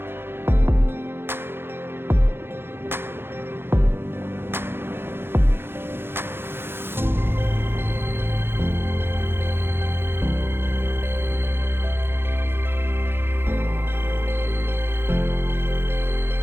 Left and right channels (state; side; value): late; left; 0.11 ms